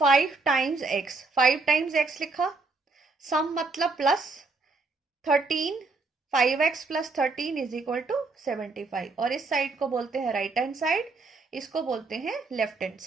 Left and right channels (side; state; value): left; quieter; 3.8 dB